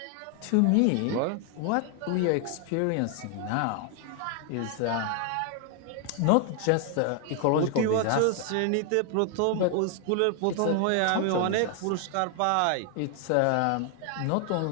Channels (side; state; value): both; different; correlation 0.00